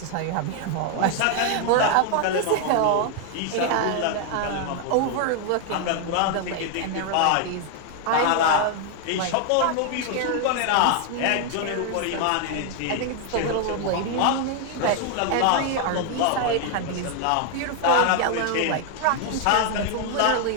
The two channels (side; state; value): both; different; correlation 0.00